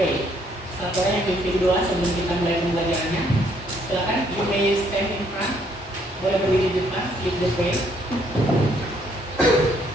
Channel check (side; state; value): both; normal; correlation 0.68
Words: Satu orang yang pimpin doa sebelum kita mulai pembelajarannya. Silakan, you may stand in front. Boleh berdiri di depan, lead the prayer.